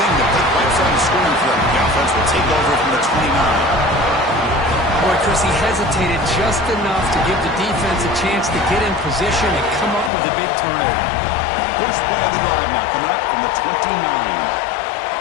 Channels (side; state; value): right; drops out; at 10.1 s